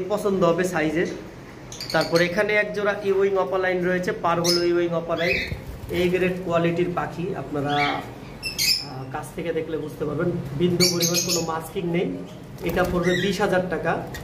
পছন্দ হবে সাইজের। তারপর এখানে এক জোড়া ইউইং অপালাইন রয়েছে, পারগুলো ইউইং অপালাইন, এই গ্রেড কোয়ালিটির পাখি। আপনারা কাছ থেকে দেখলে বুঝতে পারবেন, বিন্দু পরিমাণ কোনো মাস্কিং নেই। এটা পড়বে ২০,০০০ টাকা।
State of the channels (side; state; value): both; identical; correlation 1.00